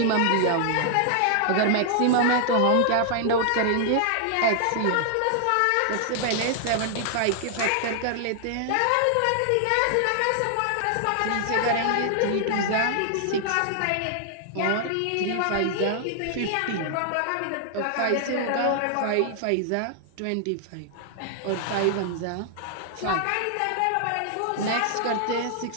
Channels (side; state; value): both; different; correlation -0.01